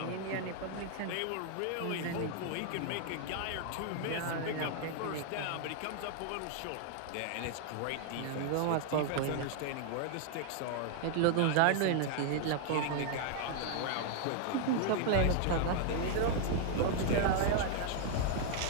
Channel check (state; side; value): different; both; correlation 0.00